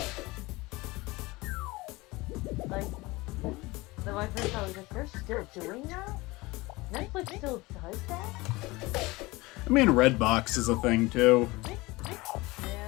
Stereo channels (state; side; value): quieter; right; 22.0 dB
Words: Like, then my first thought was like, they're still doing that? Netflix still does that? I mean, Redbox is a thing too.